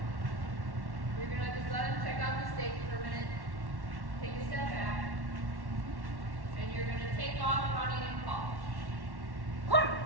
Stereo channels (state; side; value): late; left; 1.1 ms